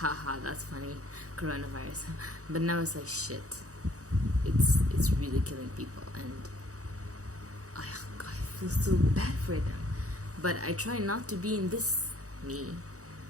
that's funny, coronavirus. But now it's like, shit, it's really killing people, and I feel so bad for them. But I try not to be in this me,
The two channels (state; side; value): late; left; 0.66 ms